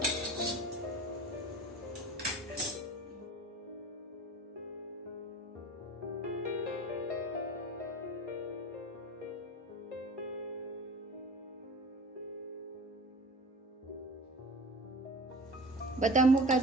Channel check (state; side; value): normal; both; correlation 0.39